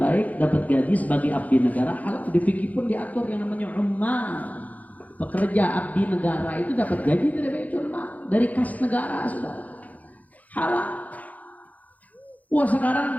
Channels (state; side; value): late; right; 0.076 ms